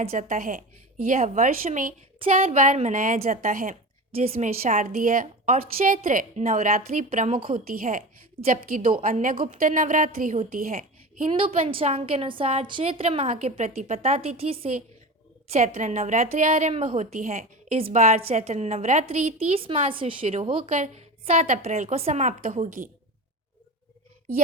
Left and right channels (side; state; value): both; normal; correlation 0.29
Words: जाता है। यह वर्ष में 4 बार मनाया जाता है, जिसमें शारदीय और चैत्र नवरात्रि प्रमुख होती है, जबकि 2 अन्य गुप्त नवरात्रि होती है। हिंदू पंचांग के अनुसार चैत्र माह के प्रतिपदा तिथि से चैत्र नवरात्रि आरंभ होती है। इस बार चैत्र नवरात्रि 30 मार्च से शुरू होकर 7 अप्रैल को समाप्त होगी।